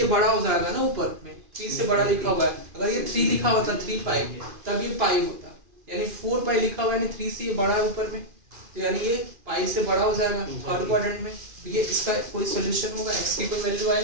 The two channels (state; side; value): late; left; 2.4 ms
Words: बड़ा हो जाएगा ना, ऊपर में 3 से बड़ा लिखा हुआ है। अगर ये 3 लिखा होता 3π तब ये पाई होता, यानी 4π लिखा हुआ है यानी 3 से ये बड़ा है ऊपर में, तो यानी ये पाई से बड़ा हो जाएगा थर्ड क्वाड्रेंट में। तो ये इसका कोई सॉल्यूशन होगा? x की कोई वैल्यू